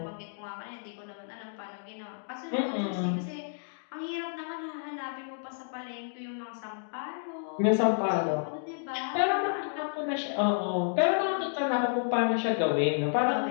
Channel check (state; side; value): silent; right; digital silence